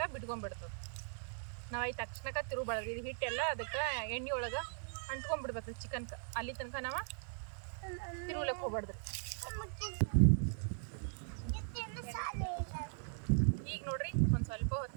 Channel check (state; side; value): silent; left; digital silence